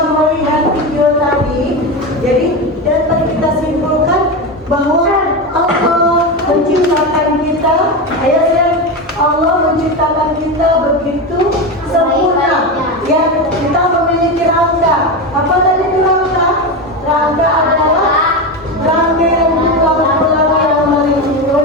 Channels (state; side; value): normal; both; correlation 0.18